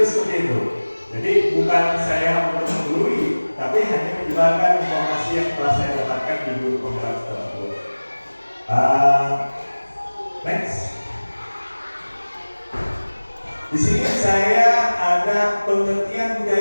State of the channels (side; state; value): both; inverted; correlation -1.00